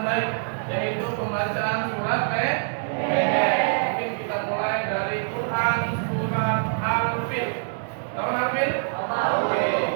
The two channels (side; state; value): left; silent; digital silence